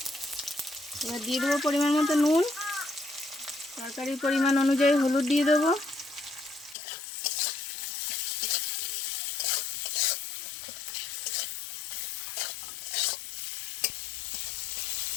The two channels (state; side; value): drops out; right; at 6.8 s